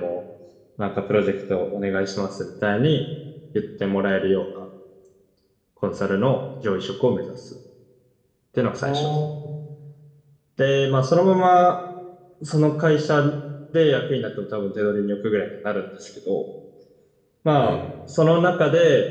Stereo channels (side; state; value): both; identical; correlation 1.00